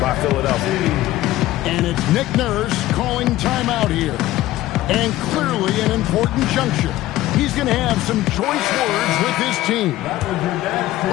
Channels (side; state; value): right; quieter; 15.7 dB